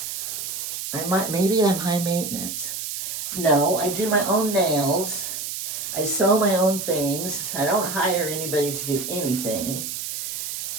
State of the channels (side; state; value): right; noise; hiss, 5 dB below the sound